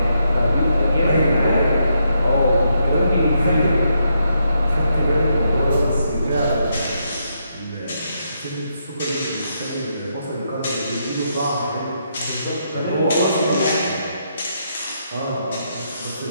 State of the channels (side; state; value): both; inverted; correlation -0.78